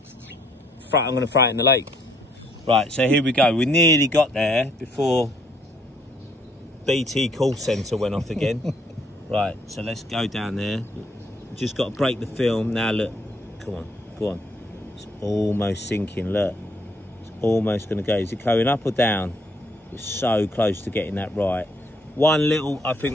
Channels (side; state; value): both; normal; correlation 0.68